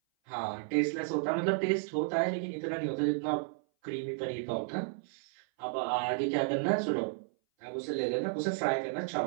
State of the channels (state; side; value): silent; left; 56 dB below the other